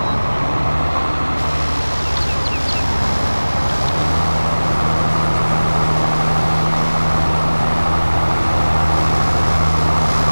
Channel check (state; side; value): inverted; both; correlation -1.00